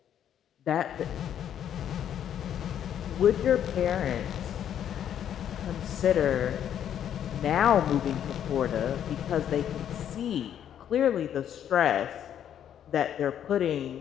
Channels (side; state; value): right; quieter; 9.8 dB